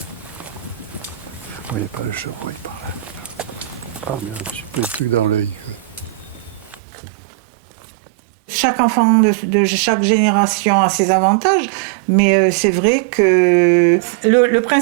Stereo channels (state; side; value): drops out; left; at 6.8 s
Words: Il n'y a pas le chevreuil par là. Ah merde, j'ai pris le truc dans l'œil. Chaque enfant de chaque génération a ses avantages, mais c'est vrai que le